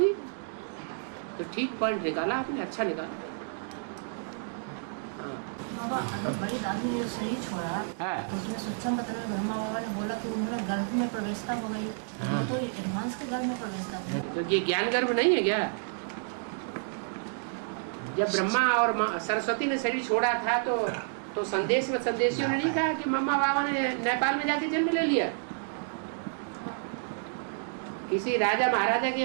तो ठीक पॉइंट निकाला आपने, अच्छा निकाला। बाबा, अगर बड़ी दादी ने शरीर छोड़ा तो उसमें सत्संग पत्र में ब्रह्मा बाबा ने बोला कि उन्होंने गर्भ में प्रवेशता हो गई। तो एडवांस के गर्भ में प्रवेशता हो गई। तो ये ज्ञान गर्भ नहीं है क्या? जब ब्रह्मा और सरस्वती ने शरीर छोड़ा था तो संदेश में संदेशियों ने नहीं कहा कि मम्मा बाबा ने नेपाल में जाके जन्म ले लिया। किसी राजा महाराजा के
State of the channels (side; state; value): left; silent; digital silence